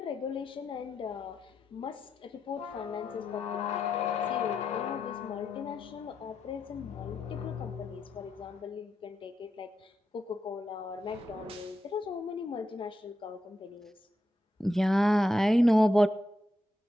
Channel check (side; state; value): both; normal; correlation 0.85